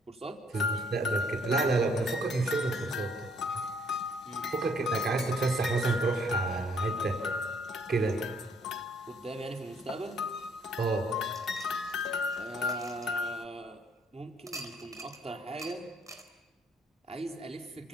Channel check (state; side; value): normal; both; correlation 0.65